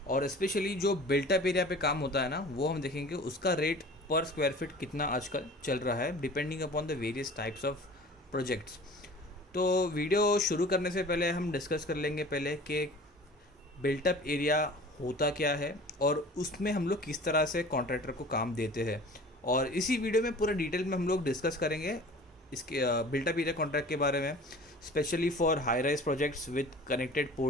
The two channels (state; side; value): normal; both; correlation 0.44